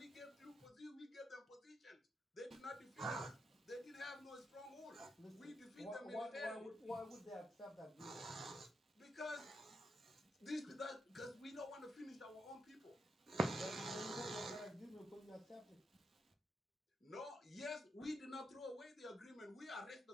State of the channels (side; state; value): both; normal; correlation 0.83